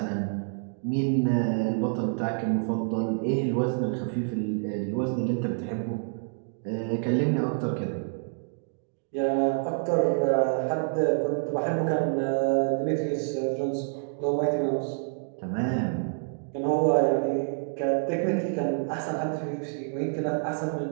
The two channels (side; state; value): left; silent; digital silence